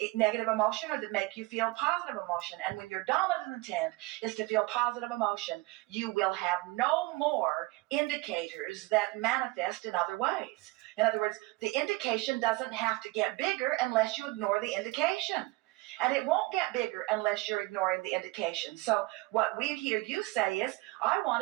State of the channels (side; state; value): left; quieter; 21.8 dB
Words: negative emotion, or that make you feel positive emotion. And when your dominant intent is to feel positive emotion, you will have no more indicators that manifest in other ways. In other words, the indication doesn't have to get bigger unless you ignore the indication. And it won't get bigger unless you're ignoring the indication. So what we hear you say is, I